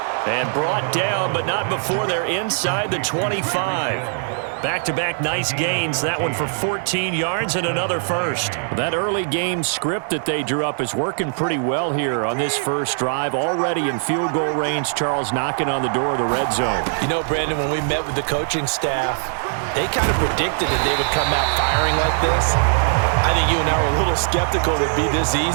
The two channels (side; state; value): left; silent; digital silence